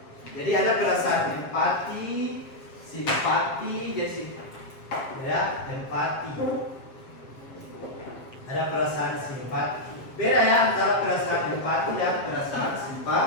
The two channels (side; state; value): right; late; 7.3 ms